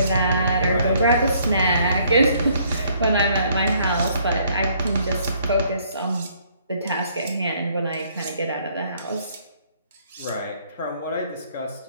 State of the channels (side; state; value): both; inverted; correlation -0.65